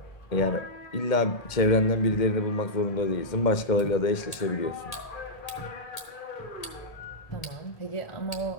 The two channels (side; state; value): right; late; 1.8 ms